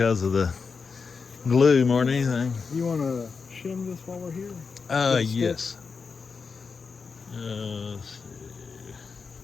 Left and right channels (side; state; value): right; quieter; 5.2 dB